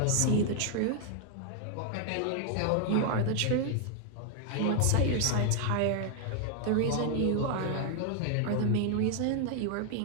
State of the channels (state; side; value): different; both; correlation 0.00